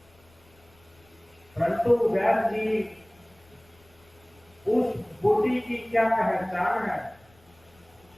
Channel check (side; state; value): left; noise; rumble, 30 dB below the sound